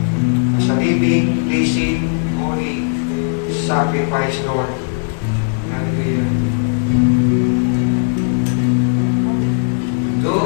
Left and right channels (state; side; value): silent; right; digital silence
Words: as a living, blessing, holy sacrifice, Lord. Hallelujah.